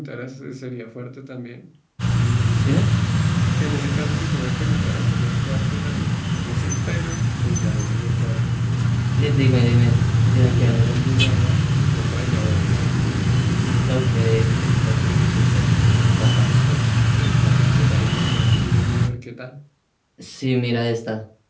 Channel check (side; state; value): both; identical; correlation 1.00